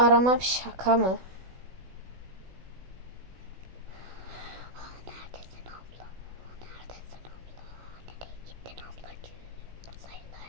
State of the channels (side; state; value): left; late; 16 ms